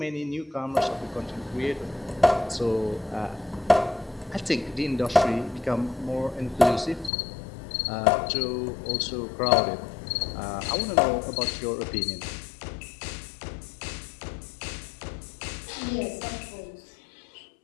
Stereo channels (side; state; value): right; drops out; at 7.1 s